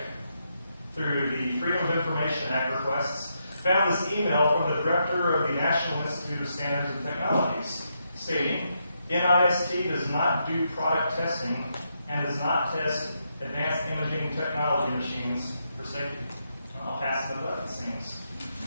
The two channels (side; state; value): both; inverted; correlation -0.81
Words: through the Freedom of Information Act requests, found this email from the director of the National Institute of Standards and Technologies, stating, NIST does not do product testing and does not test advanced imaging technology machines for safety. I'll pass the buck, it seems.